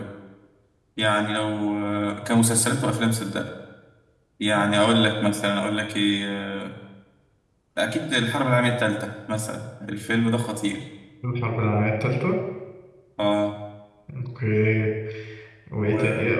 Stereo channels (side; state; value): both; identical; correlation 1.00